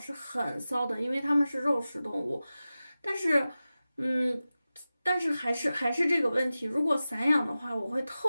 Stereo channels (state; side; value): inverted; both; correlation -0.95